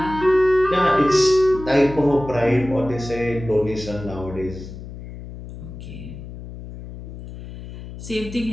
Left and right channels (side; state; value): left; noise; hum, 13 dB below the sound